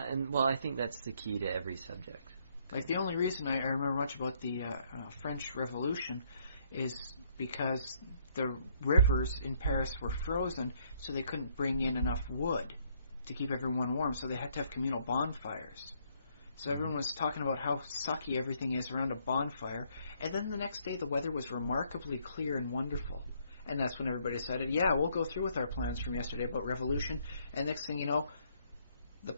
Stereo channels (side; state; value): both; inverted; correlation -0.68